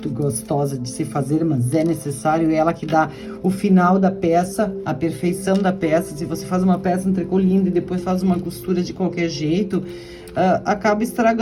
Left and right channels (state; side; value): identical; both; correlation 1.00